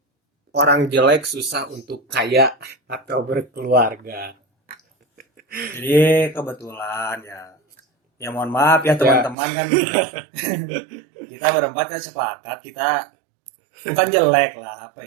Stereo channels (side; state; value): left; drops out; at 9.3 s